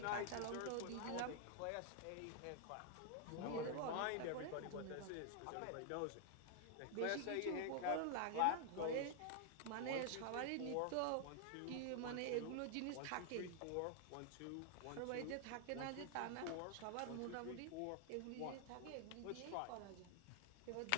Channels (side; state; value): both; different; correlation 0.00